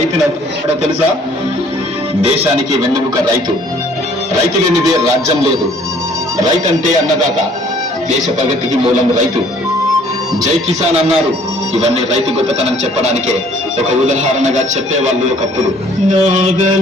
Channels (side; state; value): both; normal; correlation 0.57